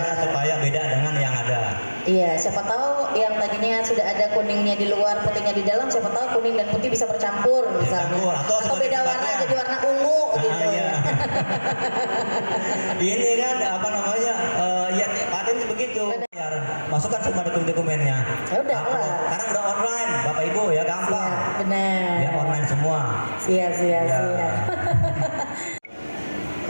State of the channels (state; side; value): inverted; both; correlation -1.00